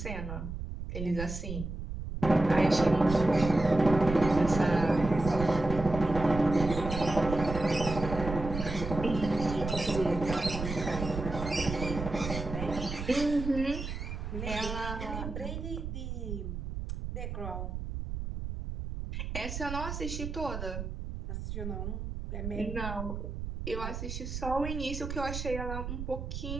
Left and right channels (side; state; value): right; noise; rumble, 6 dB below the sound